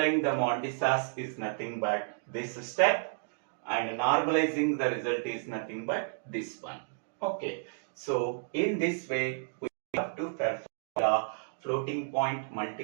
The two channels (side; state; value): left; silent; digital silence